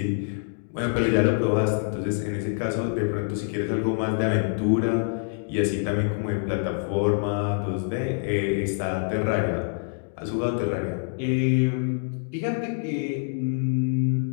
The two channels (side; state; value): right; silent; digital silence